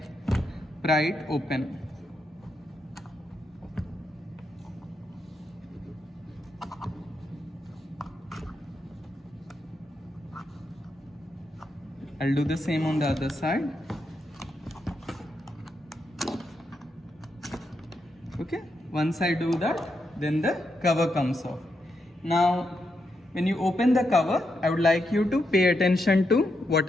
pry it open. I'll do the same on the other side. Okay, once I do that, then the cover comes off. Now, when you open the cover, I would like you to pay attention to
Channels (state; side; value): normal; both; correlation 0.83